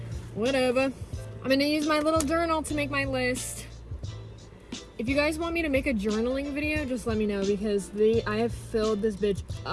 whatever. I'm gonna use my little journal to make my list. If you guys want me to make a journaling video, just let me know because I have filled this bitch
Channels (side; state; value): both; identical; correlation 1.00